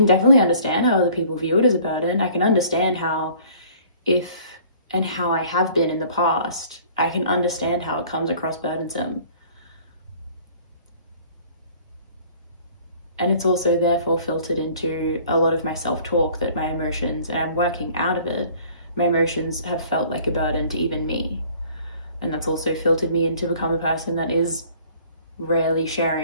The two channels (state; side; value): inverted; both; correlation -0.53